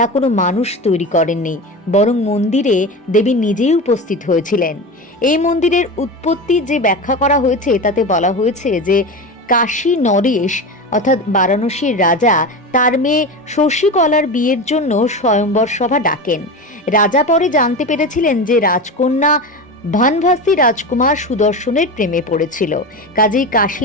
কোনো মানুষ তৈরি করেননি, বরং মন্দিরে দেবী নিজেই উপস্থিত হয়েছিলেন। এই মন্দিরের উৎপত্তি যে ব্যাখ্যা করা হয়েছে তাতে বলা হয়েছে যে কাশী নরেশ অর্থাৎ বারাণসীর রাজা তার মেয়ে শশীকলার বিয়ের জন্য স্বয়ম্বর সভা ডাকেন। রাজা পরে জানতে পেরেছিলেন যে রাজকন্যা ভানভাসী রাজকুমার সুদর্শনের প্রেমে পড়েছিল, কাজেই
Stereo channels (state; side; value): normal; both; correlation 0.25